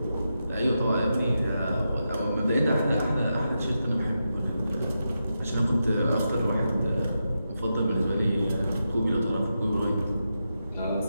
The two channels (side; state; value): both; inverted; correlation -0.87